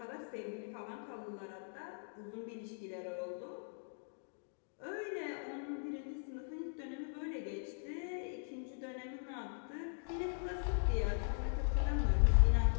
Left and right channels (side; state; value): right; silent; digital silence